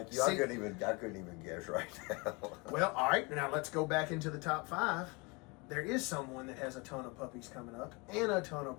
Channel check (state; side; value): quieter; right; 28.2 dB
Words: you. I couldn't even guess right now. Well, all right. Now let's go back into the top 5. There is someone that has a ton of puppies coming up and a ton of